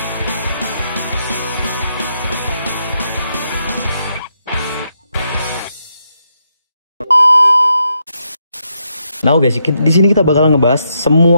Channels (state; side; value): inverted; both; correlation -0.80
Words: Nah guys, di sini kita bakal ngebahas